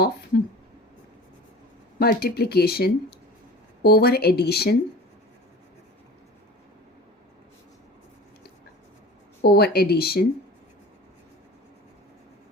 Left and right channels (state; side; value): normal; both; correlation 0.38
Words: multiplication over addition